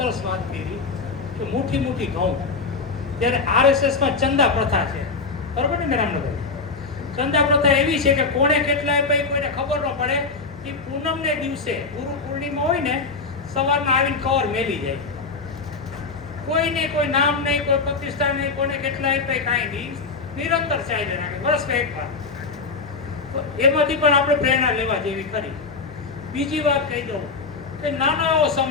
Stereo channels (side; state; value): right; quieter; 4.4 dB